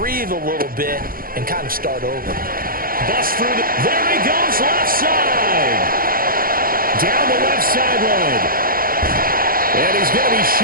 a little bit and kind of start over. Bust through there he goes, left side. Down the left sideline. And he's going to be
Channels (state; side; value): late; left; 0.42 ms